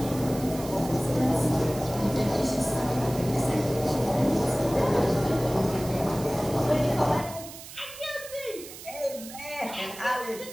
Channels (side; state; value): right; noise; hiss, 14 dB below the sound